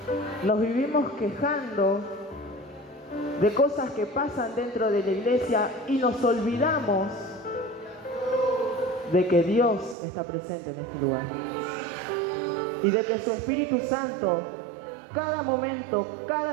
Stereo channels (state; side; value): drops out; left; at 10.0 s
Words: Nos vivimos quejando de cosas que pasan dentro de la iglesia y nos olvidamos de que Dios está presente en este lugar y de que su Espíritu Santo cada momento,